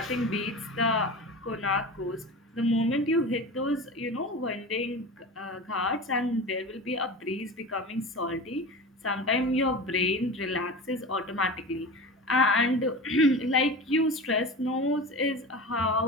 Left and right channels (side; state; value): both; normal; correlation 0.30